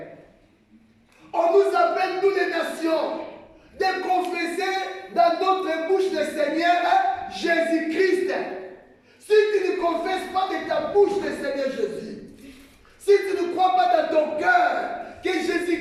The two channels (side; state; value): both; identical; correlation 1.00